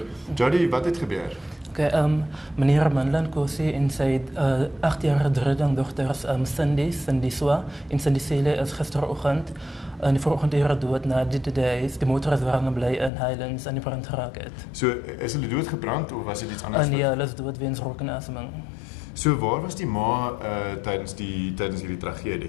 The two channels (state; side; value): drops out; right; at 13.1 s